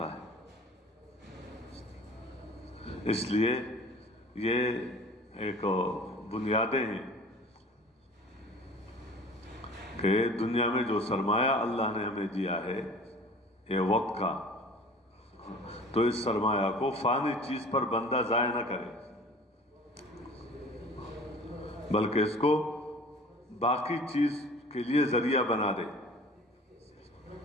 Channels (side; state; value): both; normal; correlation 0.45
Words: ہے. اس لیے یہ ایک بنیادیں ہیں کہ دنیا میں جو سرمایہ اللہ نے ہمیں دیا ہے یہ وقت کا، تو اس سرمایہ کو فانی چیز پر بندہ ضائع نہ کرے، بلکہ اس کو باقی چیز کے لیے ذریعہ بنا دے،